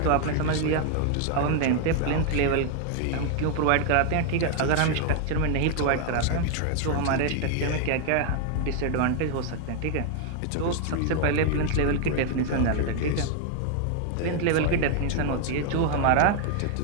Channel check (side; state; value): both; different; correlation 0.00